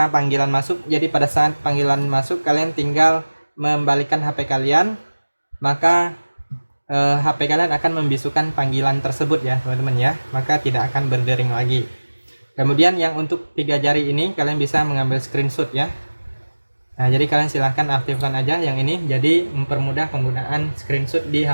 panggilan masuk, jadi pada saat panggilan masuk kalian tinggal membalikkan HP kalian, maka HP kalian akan membisukan panggilan tersebut ya teman-teman ya, maka tidak akan berdering lagi. Kemudian yang untuk 3 jari ini kalian bisa mengambil screenshot ya. Nah, jadi kalian silahkan aktifkan aja yang ini, jadi mempermudah penggunaan screenshot di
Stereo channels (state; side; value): inverted; both; correlation -1.00